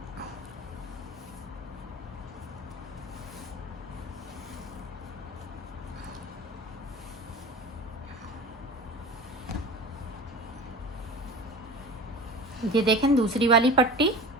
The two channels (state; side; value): normal; both; correlation 0.35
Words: ये देखें दूसरी वाली पट्टी।